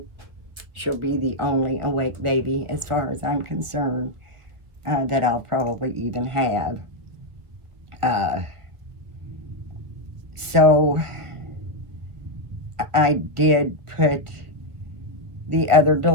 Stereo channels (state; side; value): late; left; 1.6 ms